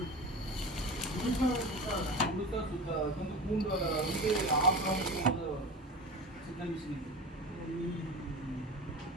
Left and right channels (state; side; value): normal; both; correlation 0.31